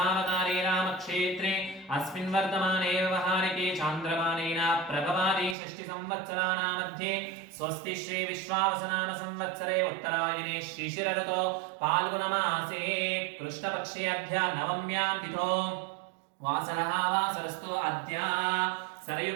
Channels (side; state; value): left; drops out; at 5.6 s